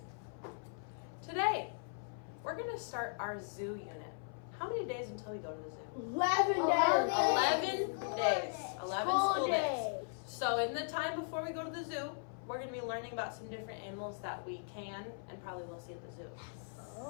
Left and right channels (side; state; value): right; silent; 52 dB below the other